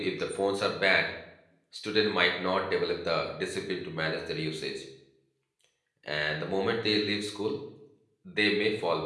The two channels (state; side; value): identical; both; correlation 1.00